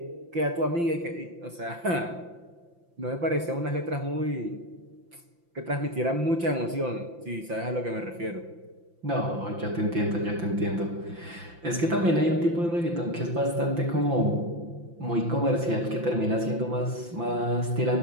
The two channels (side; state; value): left; late; 5.8 ms